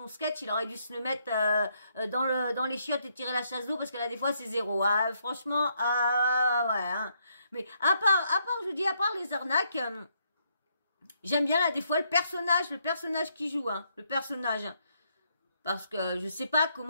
sketch, il aurait dû se le mettre dans les chiottes et tirer la chasse d'eau, parce que là, des fois, c'est zéro. Ah, franchement, ouais. Hein. Mais à part, je vous dis, à part les arnaques, j'aime bien, là, des fois, le personnage qui joue, hein. Le personnage. Parce que je sais pas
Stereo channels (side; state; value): both; inverted; correlation -0.74